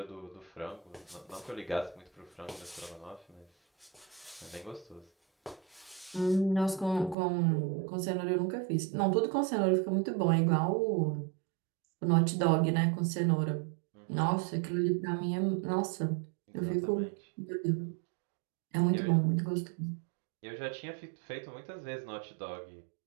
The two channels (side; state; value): left; drops out; at 7.2 s